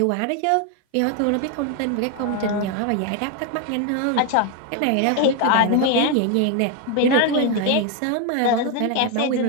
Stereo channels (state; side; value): different; both; correlation 0.01